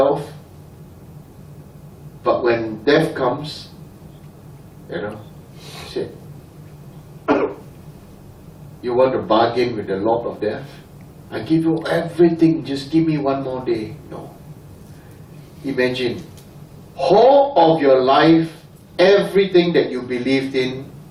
but when death comes, shit. You want to bargain with the Lord of Death? I give you everything, just give me one more day. No. Imagine, whole of your life, everything that you believed in,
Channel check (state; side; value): identical; both; correlation 1.00